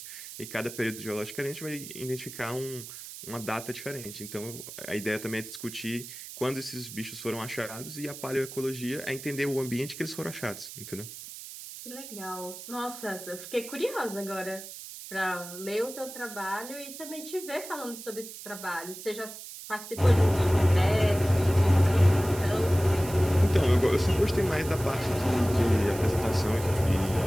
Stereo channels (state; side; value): noise; right; hiss, 12 dB below the sound